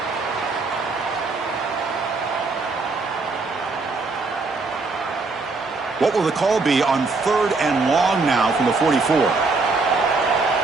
What will the call be on 3rd and long now from the 44?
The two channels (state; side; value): quieter; left; 3.9 dB